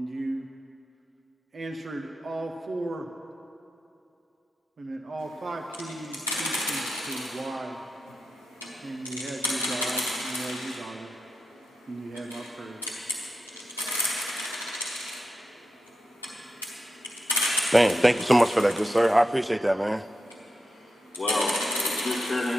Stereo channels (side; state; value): both; normal; correlation 0.90